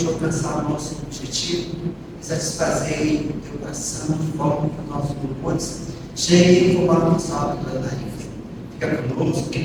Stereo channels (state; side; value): identical; both; correlation 1.00